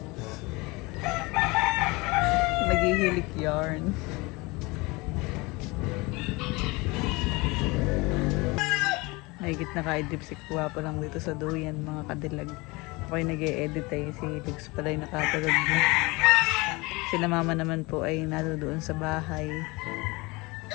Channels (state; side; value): quieter; right; 24.5 dB